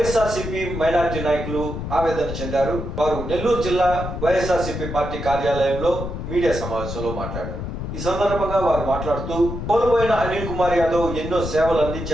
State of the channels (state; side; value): noise; left; rumble, 6 dB below the sound